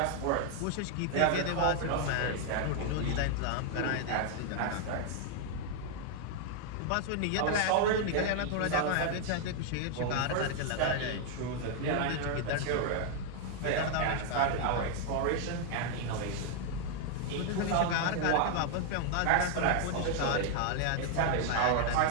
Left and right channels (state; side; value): different; both; correlation 0.00